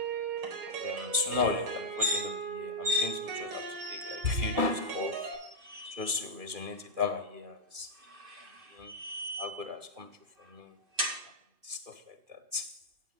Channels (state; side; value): late; left; 2.4 ms